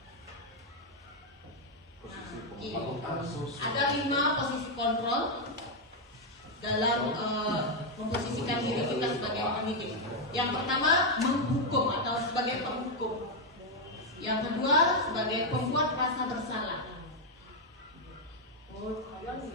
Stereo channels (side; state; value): both; normal; correlation 0.01